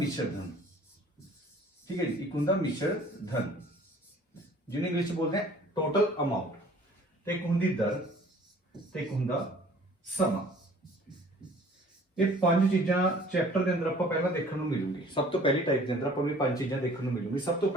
धन। ठीक है जी, एक हुंदा मिश्र धन जिन्हें इंग्लिश बोलते हैं टोटल अमाउंट। ते एक हुंदी दर ते एक हुंदा समा। ये पांच चीज़ां चैप्टर के अंदर आपां पहला देखने को मिलूगी। सब तो पहली टाइप के अंदर आपां भी पांच चीज़ां देखने को मिलूगी। सब तो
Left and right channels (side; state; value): both; normal; correlation 0.52